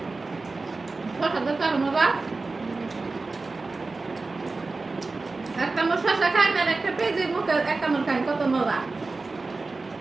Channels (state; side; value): quieter; left; 3.7 dB